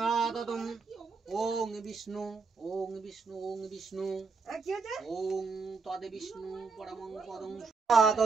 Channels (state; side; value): quieter; left; 4.6 dB